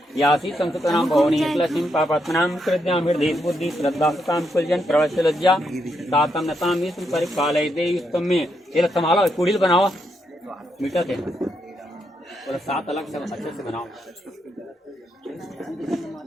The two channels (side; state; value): both; normal; correlation 0.80